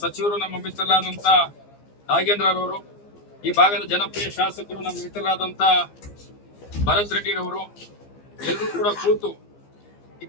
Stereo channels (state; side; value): late; right; 15 ms